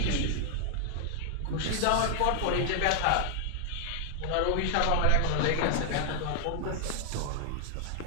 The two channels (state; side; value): different; both; correlation 0.00